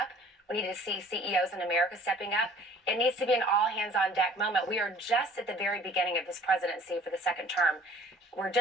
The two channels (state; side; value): normal; both; correlation 0.51